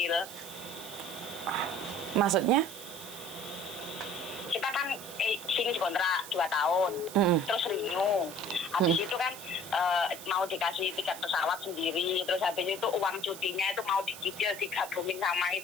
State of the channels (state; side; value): noise; right; hiss, 13 dB below the sound